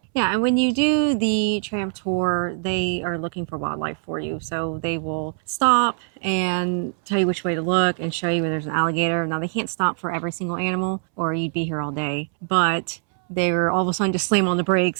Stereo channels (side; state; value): left; silent; 64 dB below the other